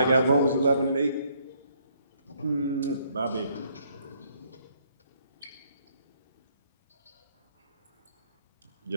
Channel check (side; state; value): both; inverted; correlation -0.68